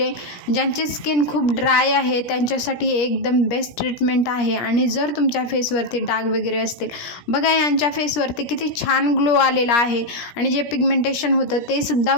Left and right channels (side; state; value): right; late; 17 ms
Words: ज्यांची स्किन खूप ड्राय आहे त्यांच्यासाठी एकदम बेस्ट ट्रीटमेंट आहे. आणि जर तुमच्या फेसवरती डाग वगैरे असतील, बघा यांच्या फेसवरती किती छान ग्लो आलेला आहे आणि जे पिगमेंटेशन होतं ते सुद्धा